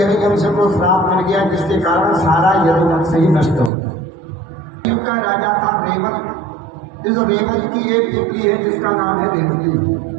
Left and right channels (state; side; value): drops out; left; at 3.7 s